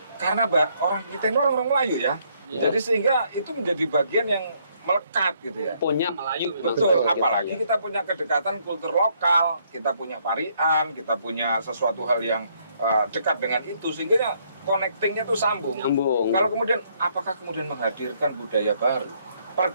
karena orang kita ini orang Melayu ya, jadi sehingga itu menjadi bagian yang melekat gitu ya. Punya Melayu memang. Betul, seperti apalagi itu. kita punya kedekatan kultur lokal, kita punya parian, kita punya sesuatu hal yang dekat dengan itu, sehingga connectingnya tuh sambung. Nyambung. Kalau kemudian, apakah kemudian menghadirkan budaya baru?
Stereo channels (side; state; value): both; inverted; correlation -0.69